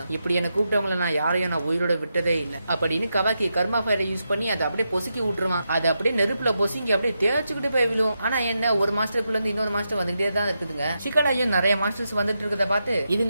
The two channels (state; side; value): inverted; both; correlation -0.86